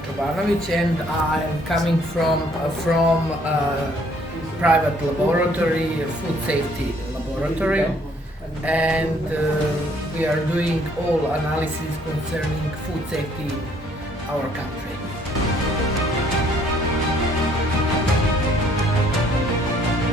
Čobanović and I am coming from private laboratory, food safety laboratory, and we are doing all analysis concerning food safety in our country.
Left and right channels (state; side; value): normal; both; correlation 0.63